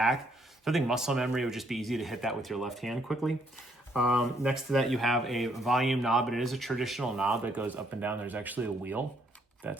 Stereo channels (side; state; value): both; normal; correlation 0.70